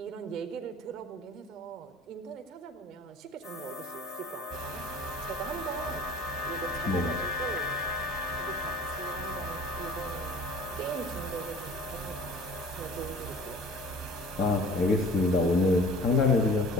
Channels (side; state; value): both; normal; correlation 0.45